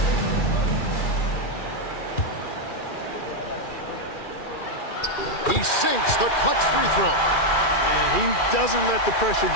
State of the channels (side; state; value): right; late; 2.4 ms